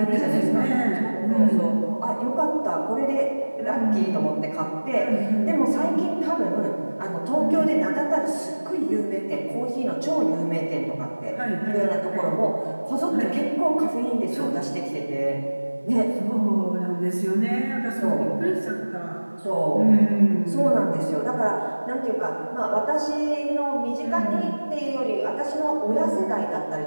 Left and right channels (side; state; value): both; inverted; correlation -1.00